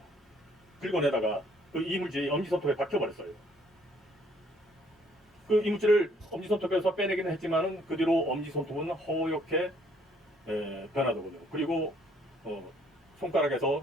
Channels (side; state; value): both; normal; correlation 0.64